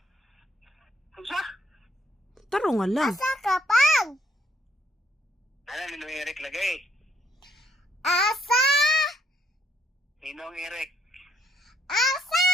Unsa? Taro nga lang. Asa ka, Pang? Ano, Ninong Eric lagay. Asa? Ninong Eric. Asa?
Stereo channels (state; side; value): normal; both; correlation 0.69